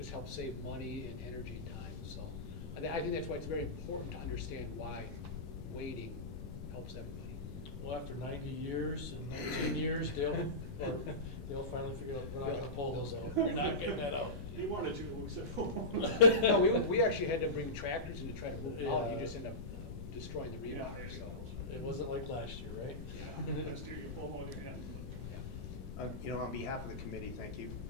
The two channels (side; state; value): left; noise; rumble, 8 dB below the sound